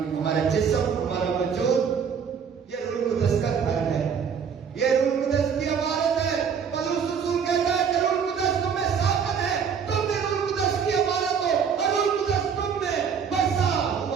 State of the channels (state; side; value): quieter; left; 6.8 dB